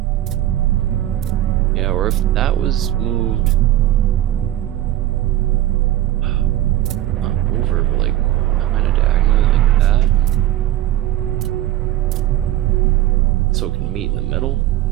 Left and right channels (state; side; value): quieter; left; 13.7 dB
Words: Yeah, or if that was moved not over, but like kind of diagonally like that, so it can meet in the middle.